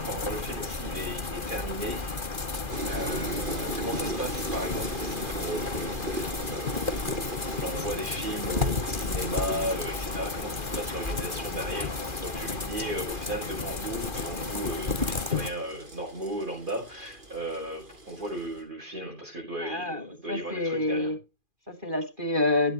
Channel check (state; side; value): late; left; 2.4 ms